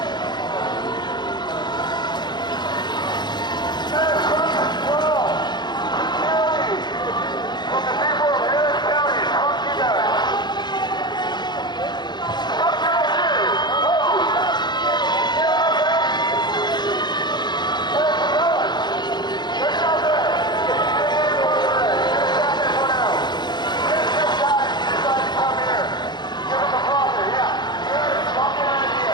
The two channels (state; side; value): late; right; 0.21 ms